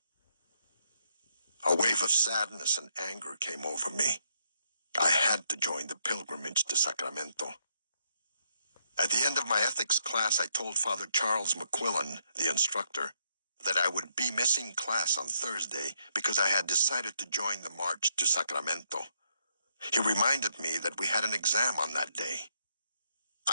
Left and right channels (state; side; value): inverted; both; correlation -0.75